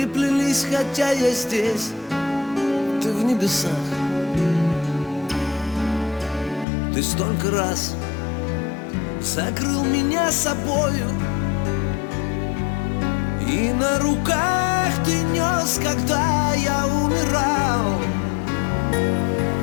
хотя я здесь, ты в небесах. Ты столько раз закрыл меня собою, и на руках ты нес, когда я умирал.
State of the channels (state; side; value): drops out; right; at 6.7 s